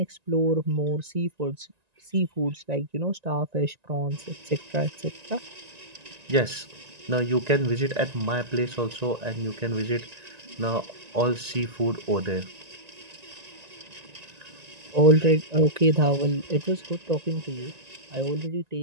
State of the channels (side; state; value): left; late; 1.9 ms